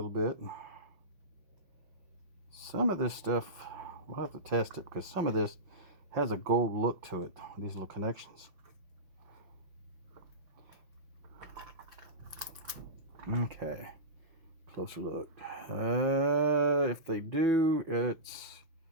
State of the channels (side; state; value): left; late; 5.6 ms